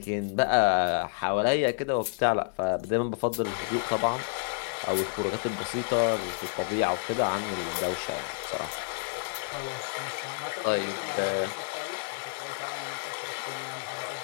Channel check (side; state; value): right; silent; digital silence